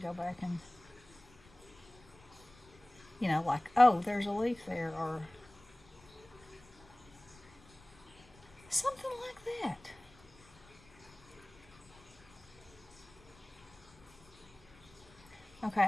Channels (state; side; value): noise; left; rumble, 24 dB below the sound